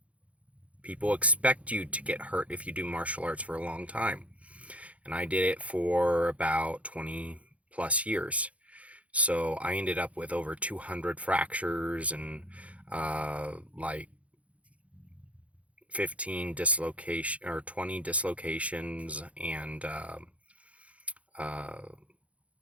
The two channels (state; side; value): late; left; 0.065 ms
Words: People expect you to get hurt if you do martial arts for a long time. And I did it for about 20 plus years. So I ended up with over 200 fractures and like 15 dislocation or 20 dislocations, and uh,